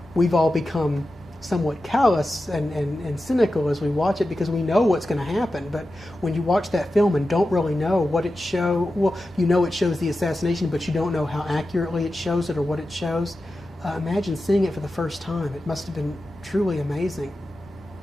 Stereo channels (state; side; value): normal; both; correlation 0.92